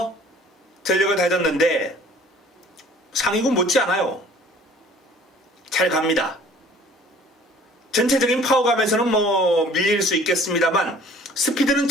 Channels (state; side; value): normal; both; correlation 0.52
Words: 전력을 다졌는데 상위군 못지않아요. 잘 갑니다. 전체적인 파워감에서는 뭐 밀릴 수 있겠습니다만 스피드는